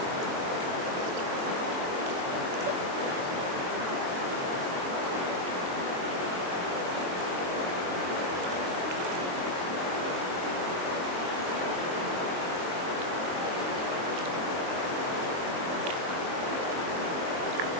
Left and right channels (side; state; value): left; late; 23 ms